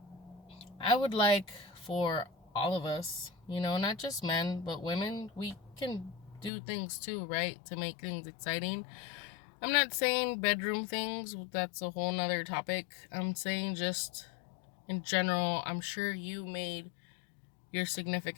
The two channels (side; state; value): right; drops out; at 6.5 s